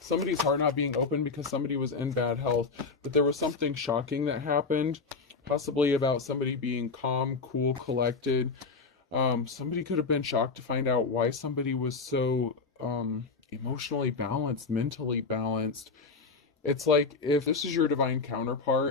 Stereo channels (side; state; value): right; quieter; 4.4 dB